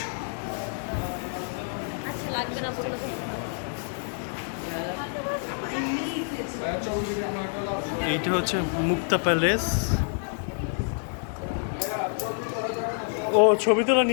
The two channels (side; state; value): right; silent; 60 dB below the other